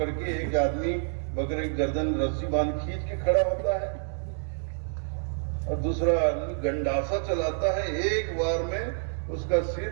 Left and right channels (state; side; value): silent; left; 59 dB below the other